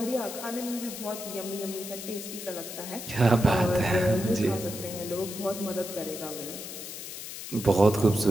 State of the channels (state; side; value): noise; left; hiss, 9 dB below the sound